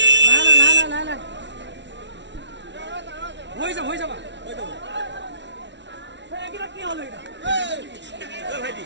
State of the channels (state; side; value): late; left; 0.51 ms